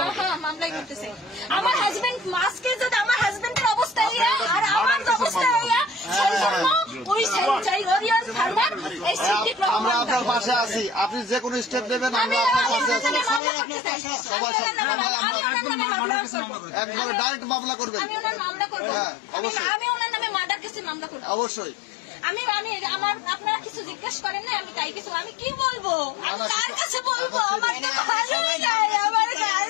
মামলাই করতেছে আমার হাজবেন্ড। মাস্কে যদি আমার হাজবেন্ডের অবস্থা আর আমার অবস্থা আমরা আপনার পাশে আছি, আপনি যে কোনো স্টেপ নেবেন আমরা আপনার পাশে আছি। একবারে ডাইরেক্ট মামলা করবেন। আমি ওনার নামে মার্ডার কেসে মামলা করব অবশ্যই। আমি আপনারা কিছু জিজ্ঞেস করেন না, আমি তাই কিছু আমি কি বলবো, আমি কার কাছে বলবো? আমার তো ভালোই নাই, আমার কার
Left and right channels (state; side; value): drops out; right; at 13.4 s